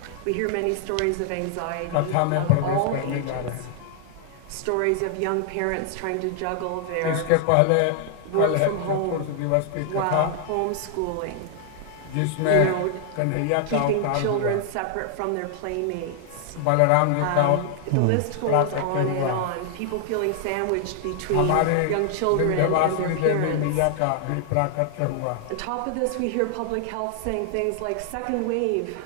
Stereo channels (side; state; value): both; different; correlation 0.00